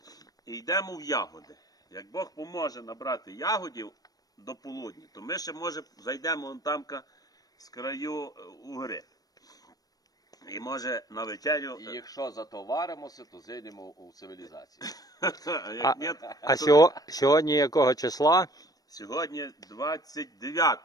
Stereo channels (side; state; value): right; late; 0.18 ms